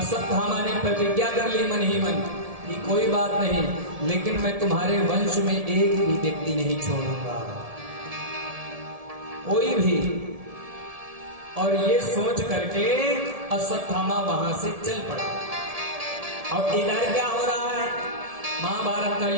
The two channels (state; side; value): late; left; 1.7 ms